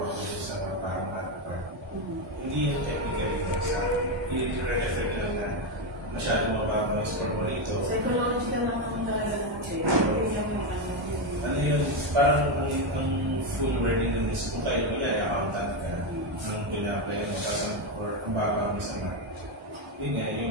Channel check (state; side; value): normal; both; correlation 0.08